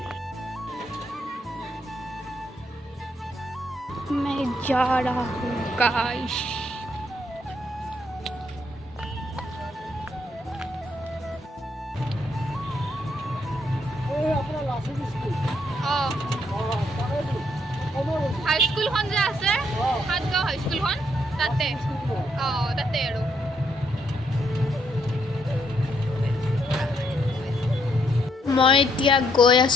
मैं जा रहा हूँ गाइस। হাই স্কুলখন যে আছে সাতগাঁও হাই স্কুলখন তাতে তাতে আৰু মই এতিয়া গৈ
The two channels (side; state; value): both; normal; correlation 0.73